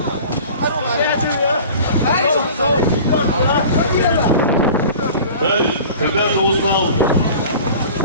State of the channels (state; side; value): inverted; both; correlation -0.41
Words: Халид, когда ты узнал?